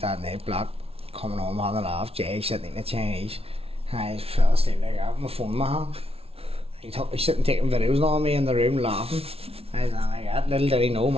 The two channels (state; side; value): late; left; 0.28 ms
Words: that night, black. Coming home on the laugh, Jay sitting in the Chinese. I fell asleep like that with my phone in my hand. He's sitting taking videos on me in the room laughing. I was like that. Little did he know